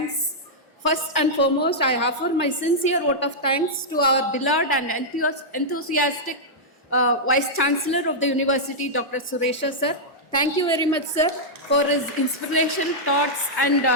First and foremost, I offer my sincere vote of thanks to our beloved and enthusiastic Vice-chancellor of the University, Dr. Suresha sir. Thank you very much, sir, for his inspiration, thoughts, and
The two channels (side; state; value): both; normal; correlation -0.08